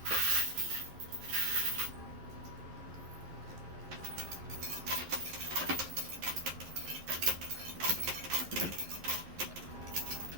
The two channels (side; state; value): left; late; 11 ms